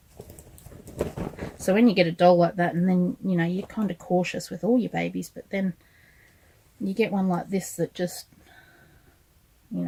So when you get a doll like that, and then, you know, you're kind of cautious with all your babies, but then you get one like this that just, you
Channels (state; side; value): identical; both; correlation 1.00